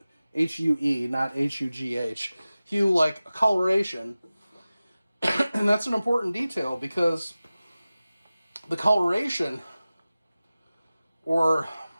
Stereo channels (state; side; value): inverted; both; correlation -0.96